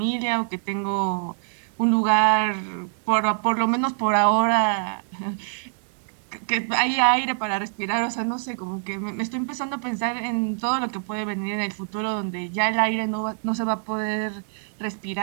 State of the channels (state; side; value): silent; left; digital silence